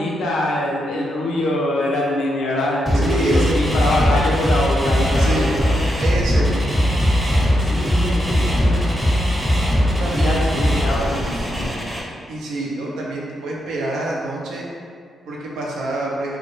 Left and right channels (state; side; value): normal; both; correlation 0.84